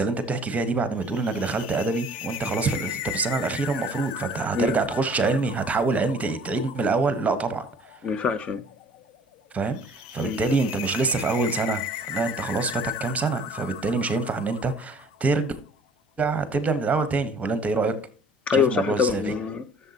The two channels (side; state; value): both; normal; correlation 0.52